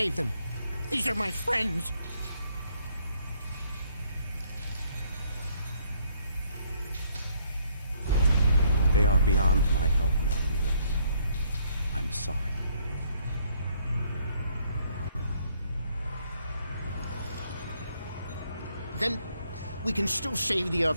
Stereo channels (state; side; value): inverted; both; correlation -0.68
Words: them. These are my friends. They are beyond my help now, Neelix. I'm sorry. Then we can still save the